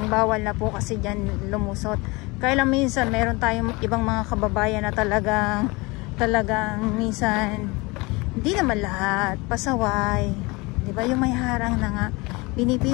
bawal na po kasi dyan lumusot. Kaya lang minsan meron tayong ibang mga kababayan na talagang minsan hindi naman lahat pasaway, di ba? Yung may harang na nga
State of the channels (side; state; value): right; quieter; 25.1 dB